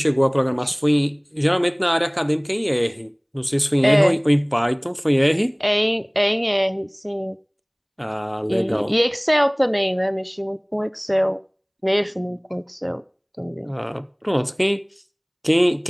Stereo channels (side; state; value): both; identical; correlation 1.00